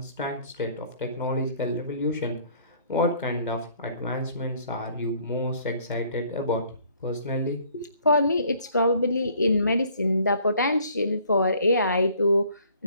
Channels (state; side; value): inverted; both; correlation -0.59